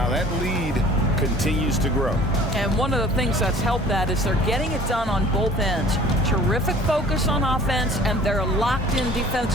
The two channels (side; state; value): both; normal; correlation 0.50